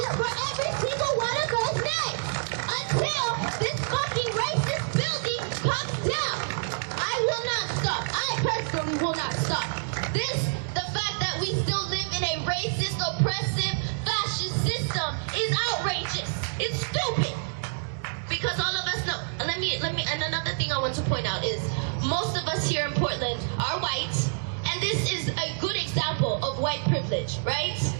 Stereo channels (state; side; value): silent; left; digital silence